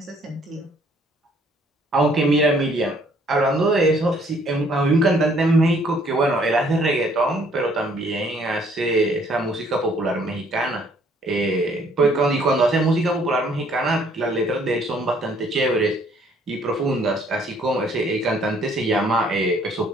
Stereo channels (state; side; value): normal; both; correlation 0.62